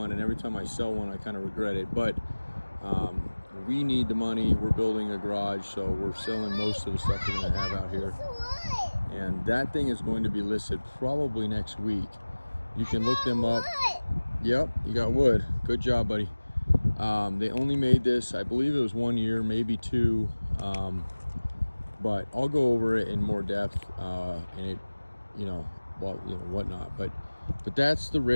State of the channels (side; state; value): both; inverted; correlation -1.00